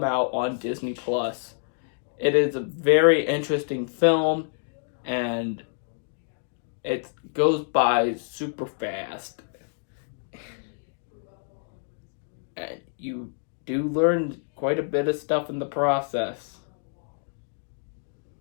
out on Disney Plus. It is a very interesting film, and it goes by super fast. And you do learn quite a bit of stuff in the process.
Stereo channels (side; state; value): right; silent; digital silence